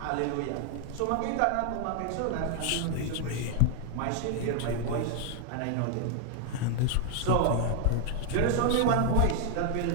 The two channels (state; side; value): different; both; correlation 0.00